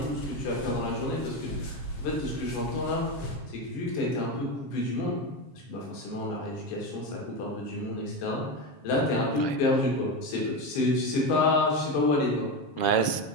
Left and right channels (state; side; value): late; right; 7.3 ms